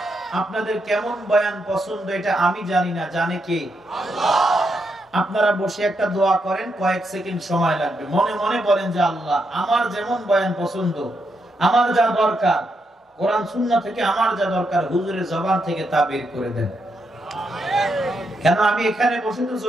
আপনাদের কেমন বয়ান পছন্দ, এটা আমি জানি না, জানে কে? আপনারা বসে একটা দোয়া করেন, কয়েক সেকেন্ড সময় লাগবে, মনে মনে বলেন যে আল্লাহ, আমার যেমন বয়ান পছন্দ, আমার যা দরকার কোরআন সুন্নাহ থেকে, আমার যা দরকার হুজুরের জবান থেকে, তা বের করে দেন। কেন আমি এখানে বসে তো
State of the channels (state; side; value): normal; both; correlation 0.81